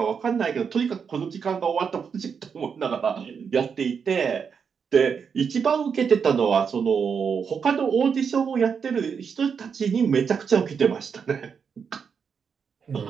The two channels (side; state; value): left; quieter; 6.4 dB